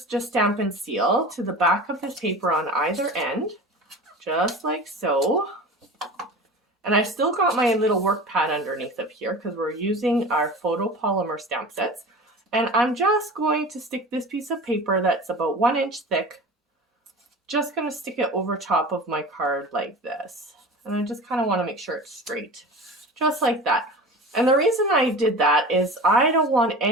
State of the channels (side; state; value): both; normal; correlation 0.35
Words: just Stampin' Seal to the back of this paper on either end, just like so. And I've still got my little work pad underneath of here because we're using our photopolymer stamp sets. And I'm just going to stick this piece of paper that's about 1 inch thick, just going to stick it over top of my card like this. And I just kind of want to make sure it's straight, just like that. And the reason I did that is I don't want